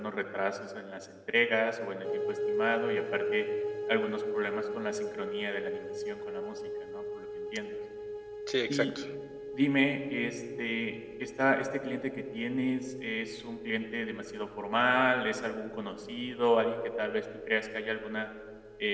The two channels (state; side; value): identical; both; correlation 1.00